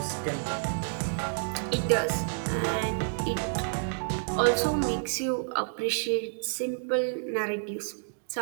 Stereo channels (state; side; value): silent; left; digital silence